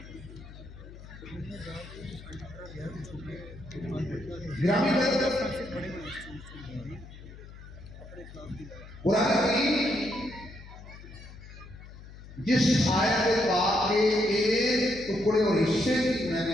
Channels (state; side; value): noise; left; hum, 16 dB below the sound